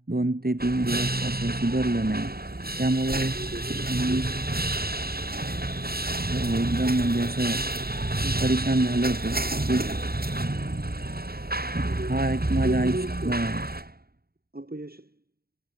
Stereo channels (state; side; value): late; left; 0.45 ms